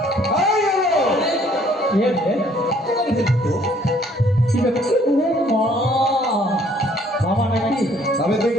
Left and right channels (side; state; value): both; normal; correlation 0.61